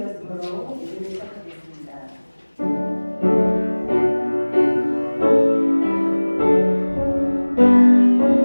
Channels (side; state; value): both; inverted; correlation -1.00